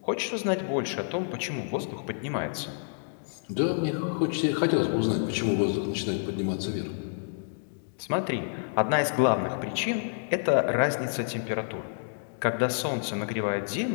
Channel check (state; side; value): silent; right; digital silence